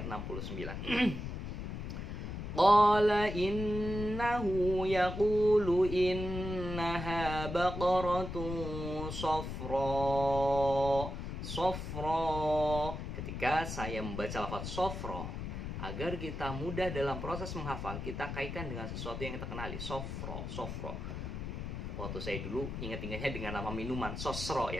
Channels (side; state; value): left; noise; rumble, 6 dB below the sound